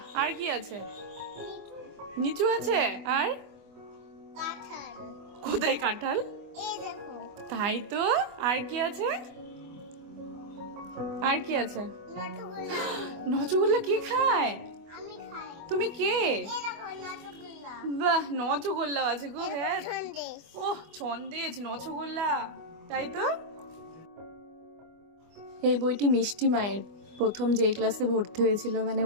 আর কি আছে? নিচু আছে। আর কাঁঠাল। কোথায় কাঁঠাল? এই দেখো তাই তো। আর কি আছে? আর কি আছে? নটগুল্লা। নচগুল্লা কে খায়? আমি খাই। তুমি কে? এই দেখো নটগুল্লা। বাহ, নচগোল্লা আছে গো। হ্যাঁ, সন্দেশ। ওহ ছন্দেজ, নচগোল্লা। তাই তো। এই বইটি মিষ্টি মায়ের প্রথম যেই ক্লাসে ভর্তি হয়েছিল, মানে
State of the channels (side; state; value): left; late; 25 ms